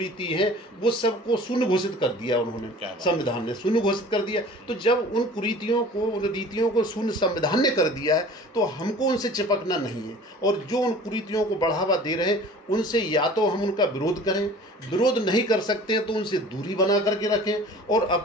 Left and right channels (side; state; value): both; normal; correlation 0.44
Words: है वो सबको शून्य घोषित कर दिया उन्होंने, संविधान ने शून्य घोषित कर दिया। तो जब उन कुरीतियों को, उन रीतियों को शून्य संविधान ने कर दिया है, तो हमको उनसे चिपकना नहीं है। और जो उन कुरीतियों को बढ़ावा दे रहे हैं, उनसे या तो हम उनका विरोध करें, विरोध नहीं कर सकते हैं तो उनसे दूरी बना करके रखें, और